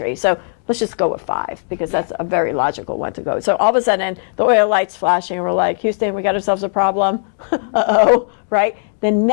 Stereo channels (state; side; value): silent; right; digital silence